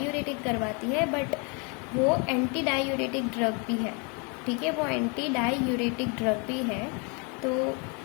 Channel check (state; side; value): quieter; right; 33.6 dB